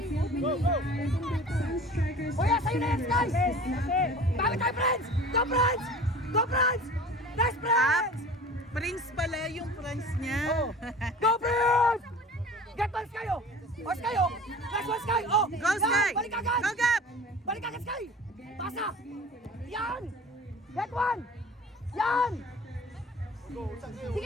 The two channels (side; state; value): both; normal; correlation 0.41